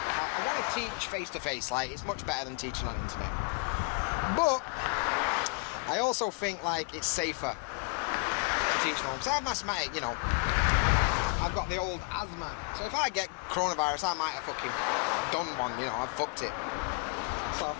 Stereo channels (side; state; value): right; quieter; 31.5 dB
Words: I want to teach face-to-face, like, it's much better than teaching on internet. But I also think, like, it's safer to teach from home. Because I have mathematics, you know, I've got the old asthma. So if I get coronavirus, I might have fucking done one, you know, I've fucked it. So I